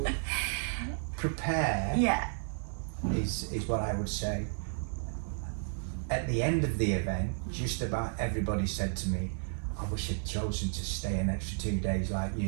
prepare. Is what I would say. At the end of the event, just about everybody said to me, "I wish I'd chosen to stay an extra 2 days like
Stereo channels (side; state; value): left; silent; digital silence